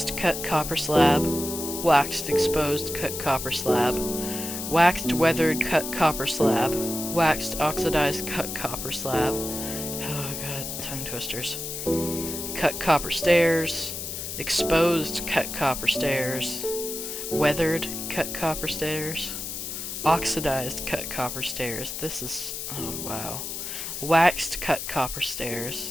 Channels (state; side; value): noise; left; hiss, 6 dB below the sound